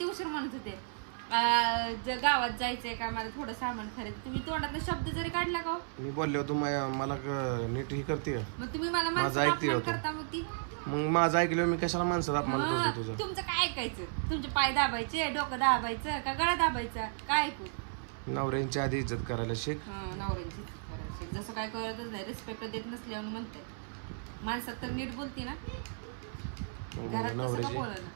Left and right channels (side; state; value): left; silent; 55 dB below the other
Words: उशीर म्हणत होते गावात जायचंय का मला थोडं सामान खरेदी, तुम्ही तोंडात शब्द जरी काढला का? मी बोलले होतो मला नीट ही करते. मग तुम्ही मला माझं ऐकते होतो. मग माझं ऐकलं मी कशाला माणसाला अपमान करतो तुझा? तुमचं काय ऐकायचं? तुमचे पाय दाबायचे, डोकं दाबायचं का गळा दाबायचा? काय ऐकू? नवऱ्यांची आधी इज्जत करायला शिक. नवऱ्यांची इज्जत करायला शिक. जसं काय करतच नाही, रिस्पेक्ट देत नसल्यावर म्हणते माणसात तर नीट बोलते ना.